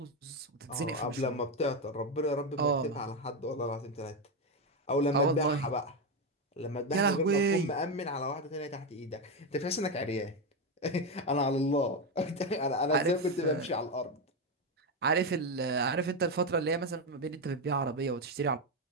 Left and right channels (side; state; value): both; normal; correlation 0.10